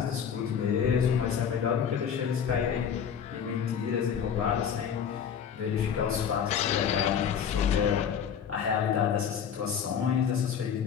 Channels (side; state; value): right; quieter; 7.8 dB